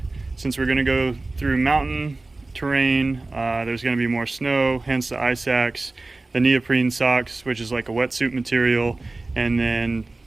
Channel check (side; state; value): left; quieter; 3.2 dB